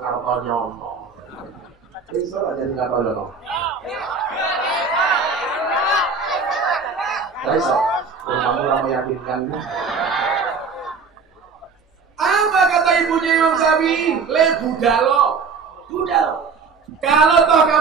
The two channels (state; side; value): quieter; left; 5.1 dB